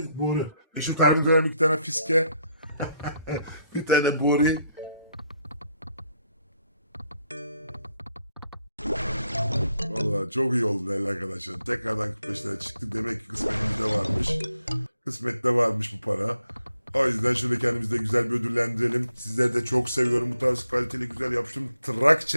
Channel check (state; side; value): inverted; both; correlation -0.76